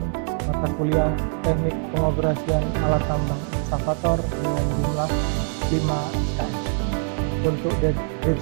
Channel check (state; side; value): silent; left; 57 dB below the other